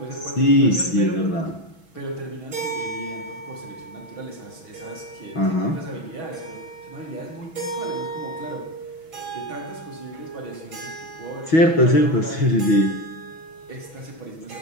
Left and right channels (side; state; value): right; late; 6.2 ms